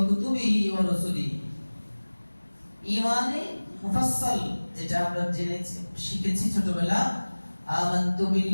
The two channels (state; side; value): inverted; both; correlation -1.00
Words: কুতুবিহি ওয়া রাসূলিহি। ঈমানে মুফাসসাল যেটা আমরা জেনেছি, শিখেছি ছোটবেলা, আমানতু